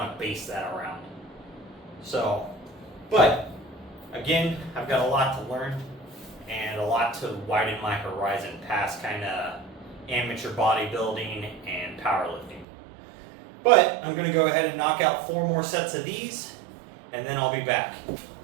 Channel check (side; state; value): left; drops out; at 12.7 s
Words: to base that around. So, but again, I've got a lot to learn and a lot to widen my horizon past kind of amateur bodybuilding and powerlifting. But I'm going to go ahead and knock out 4 more sets of these, and then I'll be back.